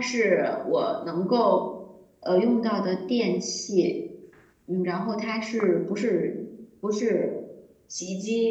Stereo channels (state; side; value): identical; both; correlation 1.00